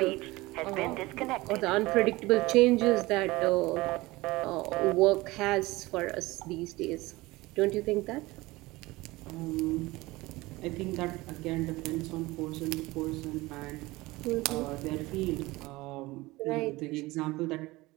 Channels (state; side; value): quieter; left; 20.5 dB